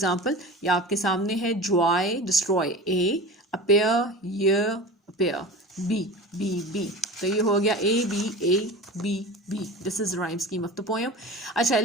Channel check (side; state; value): both; normal; correlation 0.33